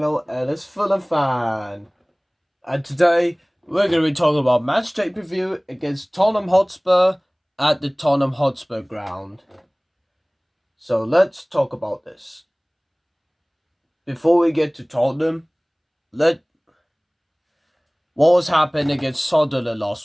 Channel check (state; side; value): identical; both; correlation 1.00